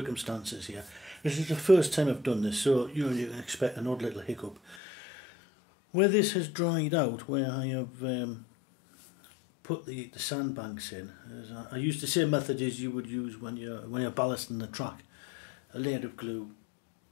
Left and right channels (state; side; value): drops out; right; at 4.8 s